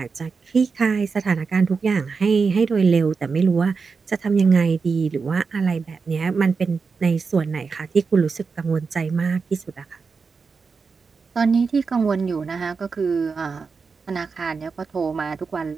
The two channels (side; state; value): left; quieter; 5.0 dB